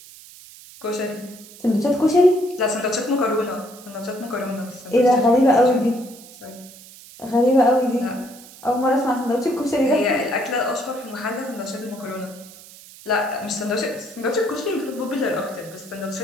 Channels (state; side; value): noise; right; hiss, 19 dB below the sound